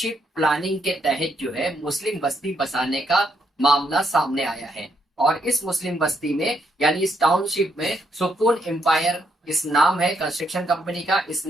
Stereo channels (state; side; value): normal; both; correlation 0.76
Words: प्लानिंग के तहत जो है मुस्लिम बस्ती बसाने का मामला सामने आया है और इस मुस्लिम बस्ती में यानी इस टाउनशिप में सुकून एम्पायर इस नाम है कंस्ट्रक्शन कंपनी का।